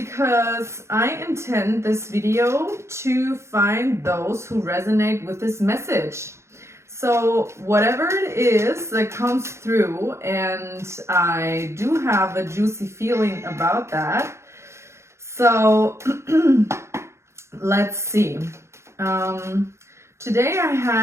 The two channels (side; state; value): left; late; 0.13 ms